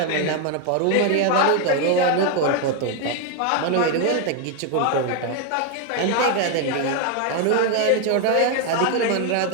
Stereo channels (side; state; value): both; different; correlation 0.01